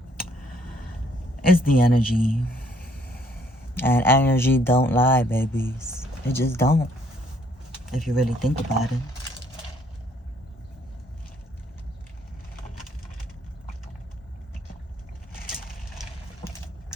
It's the energy. And energy don't lie, babies. It just don't. If you really think about it.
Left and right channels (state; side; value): normal; both; correlation 0.65